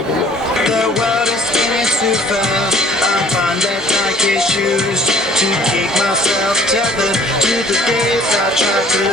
a lot. The world is spinning too fast. I find that Nike shoes to keep myself tethered to the days I tried to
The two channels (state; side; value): normal; both; correlation 0.54